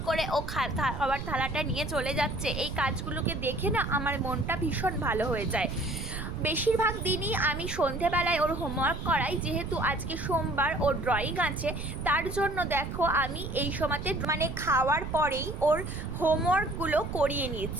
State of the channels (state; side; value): noise; right; rumble, 6 dB below the sound